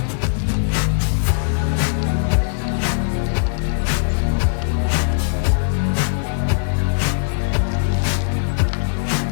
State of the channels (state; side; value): silent; right; digital silence